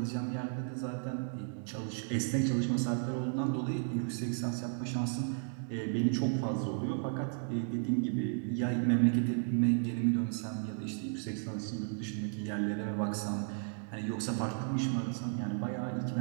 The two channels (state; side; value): silent; left; 55 dB below the other